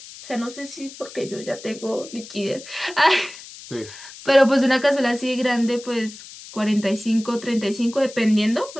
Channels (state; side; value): noise; left; hiss, 16 dB below the sound